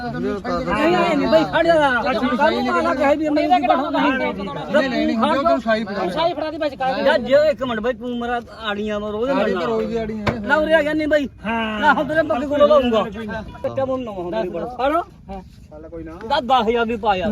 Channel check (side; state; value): both; identical; correlation 1.00